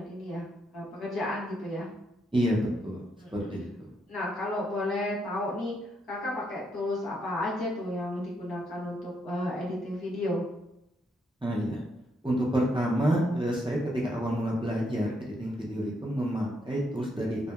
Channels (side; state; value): both; normal; correlation 0.77